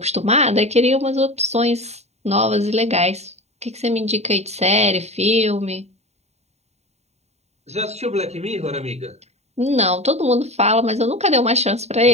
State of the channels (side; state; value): left; late; 0.32 ms